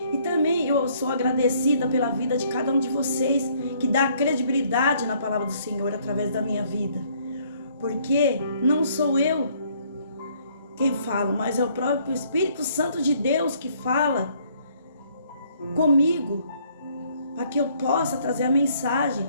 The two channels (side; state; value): both; inverted; correlation -0.64